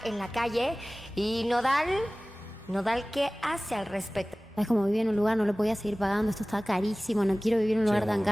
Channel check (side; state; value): both; normal; correlation 0.98